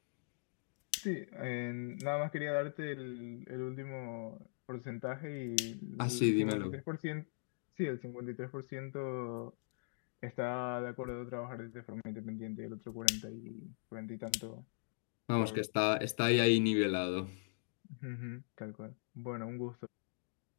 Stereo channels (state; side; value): silent; right; digital silence